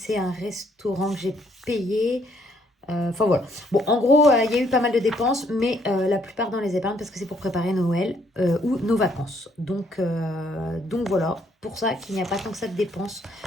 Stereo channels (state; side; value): normal; both; correlation 0.68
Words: un restaurant que j'ai payé. Enfin voilà. Bon, en gros, il y a eu pas mal de dépenses, mais la plupart dans les épargnes parce que c'est pour préparer Noël ou nos vacances. Donc voilà, pour ça qu'il n'y a pas tant que ça de dépenses